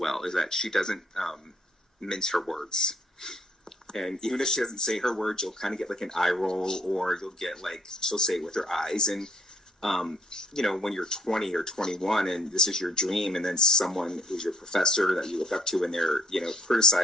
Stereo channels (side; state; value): both; normal; correlation 0.66